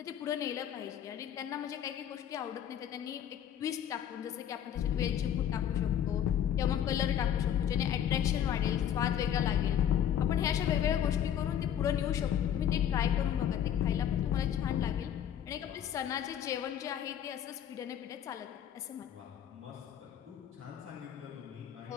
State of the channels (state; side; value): quieter; right; 9.7 dB